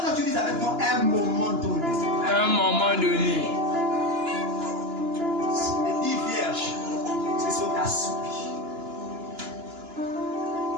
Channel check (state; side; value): late; left; 2.9 ms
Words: tu dises avec moi un moment donné. Un moment donné. Les 10 vierges se sont assoupies.